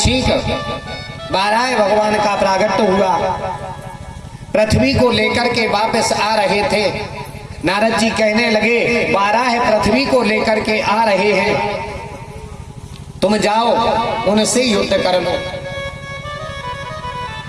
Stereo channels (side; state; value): both; identical; correlation 1.00